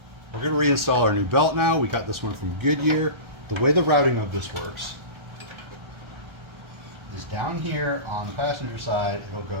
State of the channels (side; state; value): left; late; 1.3 ms